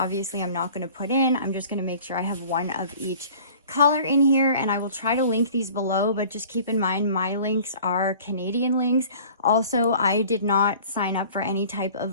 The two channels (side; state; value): both; inverted; correlation -0.47